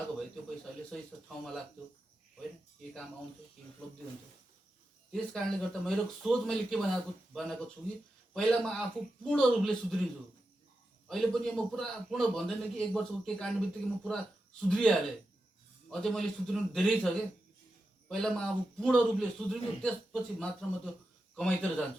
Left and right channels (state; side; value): normal; both; correlation 0.90